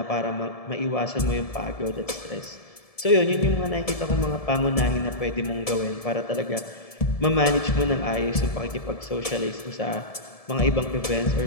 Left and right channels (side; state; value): right; late; 1.7 ms